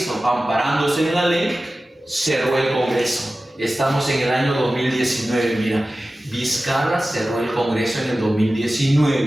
Amparándose en la ley, cerró el Congreso. Estamos en el año 2019, mira, Vizcarra cerró el Congreso en el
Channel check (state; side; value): normal; both; correlation 0.95